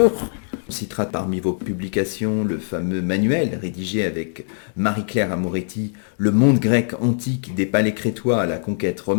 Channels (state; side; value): silent; right; 64 dB below the other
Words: On citera parmi vos publications le fameux manuel rédigé avec Marie-Claire Amoretti, Le monde grec antique des palais crétois à la conquête